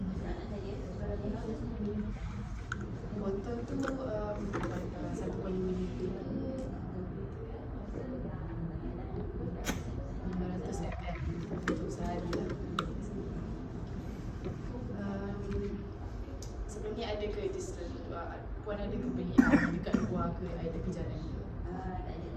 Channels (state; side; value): identical; both; correlation 1.00